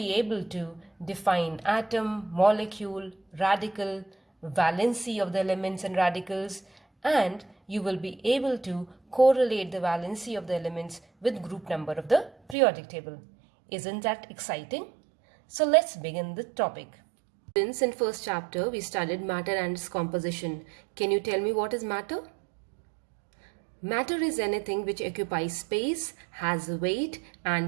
able to define atom, molecule, radical, valency of the elements and radicals, and you will be able to correlate the valency of the elements with group number of the periodic table. Isn't that exciting? So let's begin the topic. Since in first chapter we studied matter and its composition. Can you tell me what is matter? Matter is anything which occupies space, has weight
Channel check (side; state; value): left; drops out; at 12.6 s